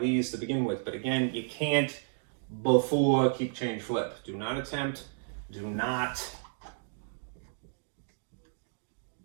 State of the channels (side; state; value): left; silent; digital silence